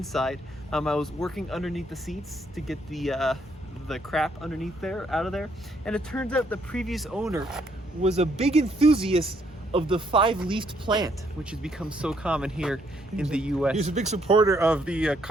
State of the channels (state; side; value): normal; both; correlation 0.70